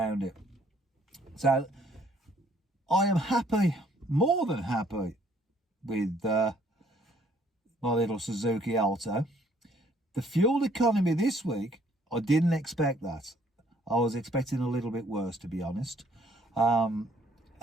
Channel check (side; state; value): both; normal; correlation 0.63